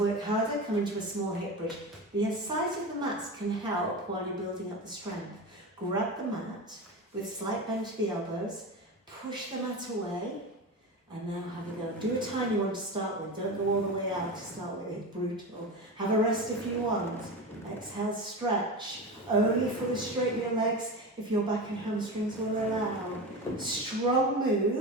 harder? Come into a small hip bridge. The size of the mats can help while you're building up the strength. Grab the mat with slight bend to the elbows, push the mat away, and now have a go. Do a tiny one to start with. Don't go all the way out to start with. It's brutal. Have a rest if you want. Exhale, stretch. Only fully straighten your legs if your back and hamstrings will allow. Strong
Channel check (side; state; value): both; normal; correlation 0.25